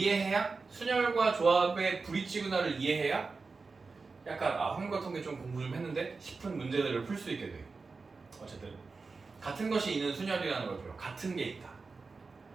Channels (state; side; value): quieter; left; 4.3 dB